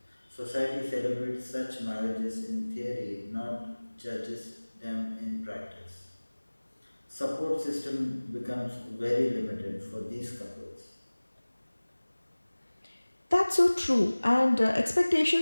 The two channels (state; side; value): inverted; both; correlation -1.00